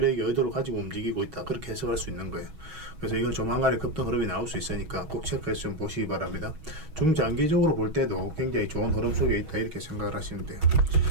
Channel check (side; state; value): left; late; 6.2 ms